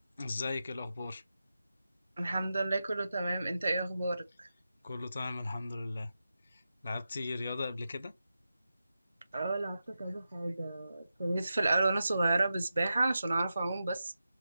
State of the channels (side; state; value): both; inverted; correlation -0.90